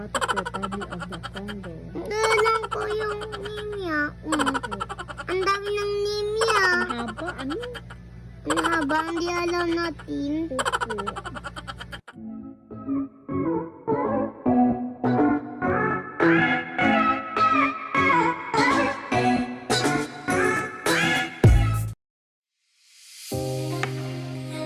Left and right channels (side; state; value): both; identical; correlation 1.00